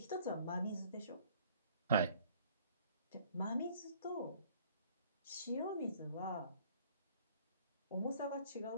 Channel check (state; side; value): inverted; both; correlation -0.56